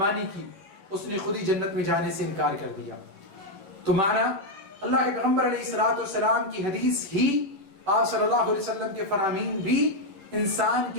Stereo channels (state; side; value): late; left; 10 ms